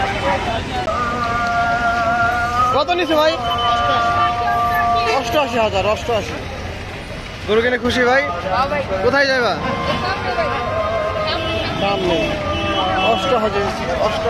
কত নিছে ভাই? 88,000। 88। গরু কিনে খুশি ভাই? কোথায় যাবা? দাম নেই।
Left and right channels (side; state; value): both; identical; correlation 1.00